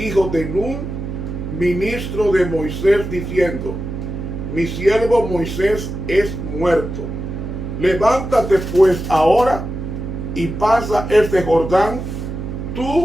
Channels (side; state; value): right; noise; hum, 6 dB below the sound